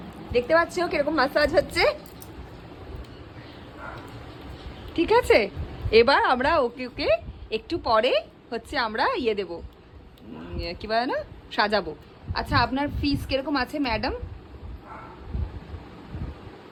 দেখতে পাচ্ছ কিরকম মাসাজ হচ্ছে, ঠিক আছে। এবার আমরা ওকে ওকে একটু পরে হচ্ছে আমরা ইয়ে দেবো, কি বলে না, সাজাবো। আচ্ছা আপনার ফিস কিরকম আছে ম্যাডাম?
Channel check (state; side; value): identical; both; correlation 1.00